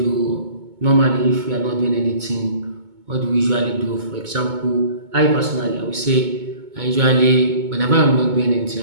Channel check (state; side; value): late; left; 2.2 ms